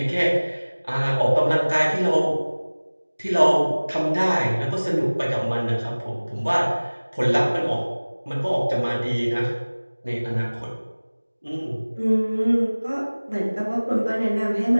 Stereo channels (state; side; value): inverted; both; correlation -1.00